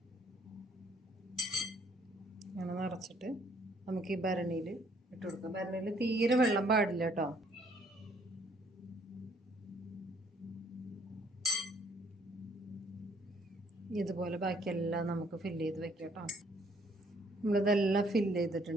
അങ്ങനെ നിറച്ചിട്ട് നമുക്ക് ഈ ഭരണിയിൽ ഇട്ട് കൊടുക്കാം. ഭരണിയിൽ തീരെ വെള്ളം പാടില്ല കേട്ടോ. ഇതുപോലെ ബാക്കിയെല്ലാം നമുക്ക് ഫില്ല് ചെയ്ത് വെക്കാം കേട്ടോ. നമ്മളിതെല്ലാം ഫില്ല്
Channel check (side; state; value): both; normal; correlation 0.64